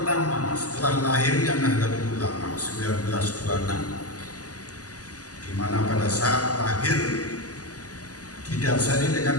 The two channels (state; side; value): late; right; 0.67 ms